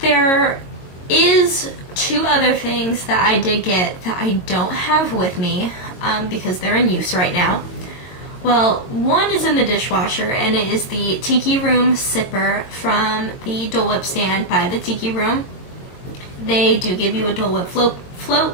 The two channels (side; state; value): right; late; 22 ms